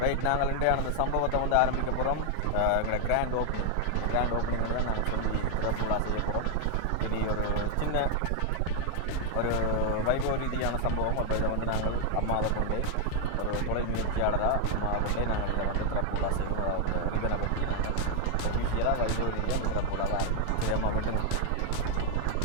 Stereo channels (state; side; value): different; both; correlation 0.00